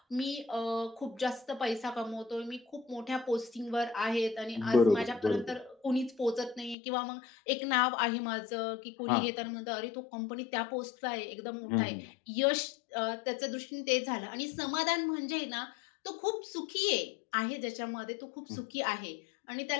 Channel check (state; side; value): drops out; right; at 6.8 s